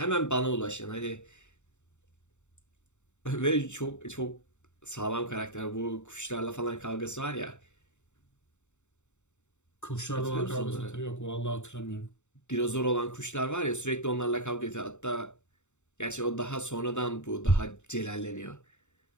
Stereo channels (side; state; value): right; late; 0.84 ms